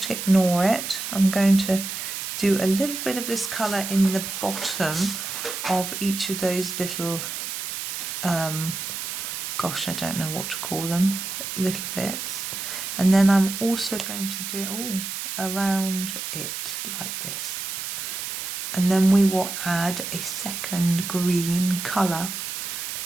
ignore it. I'm going to do a little bit of this colour in the bottom of each of those little, gosh, I don't know what to call them, little bits. And then I'm also going to do around it like this. And then we will add a second green colour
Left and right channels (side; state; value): right; noise; hiss, 5 dB below the sound